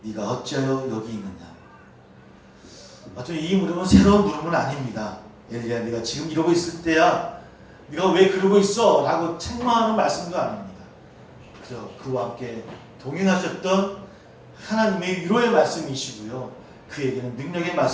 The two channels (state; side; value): identical; both; correlation 1.00